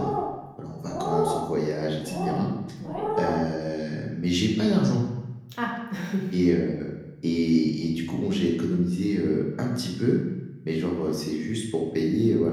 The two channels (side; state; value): both; identical; correlation 1.00